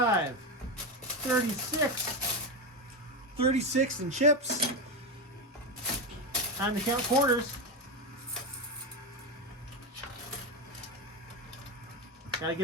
36, 36 in chips. Time to count quarters. Gotta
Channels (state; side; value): normal; both; correlation 0.13